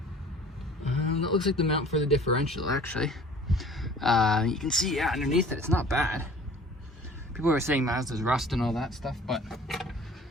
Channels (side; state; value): both; normal; correlation 0.48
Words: That looks like the mount for the differential, actually. You can see, yeah, underneath it, it's not bad. People are saying Mazda's rust and all that stuff, but